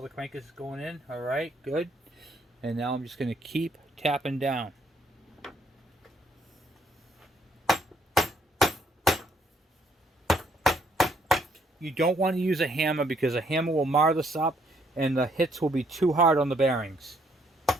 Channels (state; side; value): normal; both; correlation 0.69